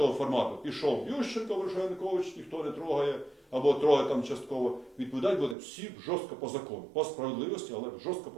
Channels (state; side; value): drops out; left; at 5.6 s